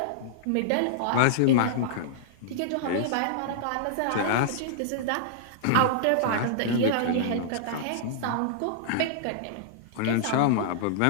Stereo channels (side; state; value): both; different; correlation -0.02